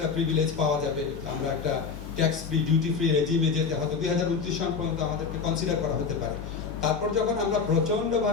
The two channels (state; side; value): quieter; right; 5.4 dB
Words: প্রিভিলেজ পাওয়া যাবে, আমরা একটা ট্যাক্স ফ্রি, ডিউটি ফ্রি রেজিমে যেতে হয়তো 2029 সাল পর্যন্ত আমাদেরকে কনসিডার করা হতে পারে। তারপর যখন আমরা